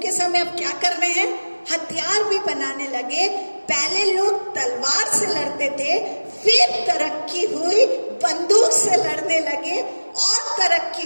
के समय अब क्या कर रहे हैं? हथियार भी बनाने लगे। पहले लोग तलवार से लड़ते थे, फिर तरक्की हुई बंदूक से लड़ने लगे, और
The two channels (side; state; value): both; inverted; correlation -1.00